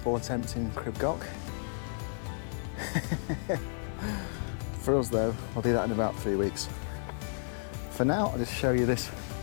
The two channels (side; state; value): right; silent; digital silence